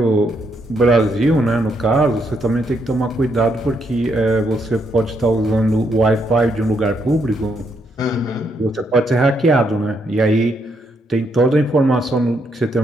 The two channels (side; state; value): both; normal; correlation 0.76